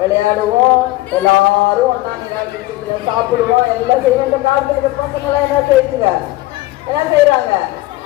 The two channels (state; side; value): quieter; right; 18.3 dB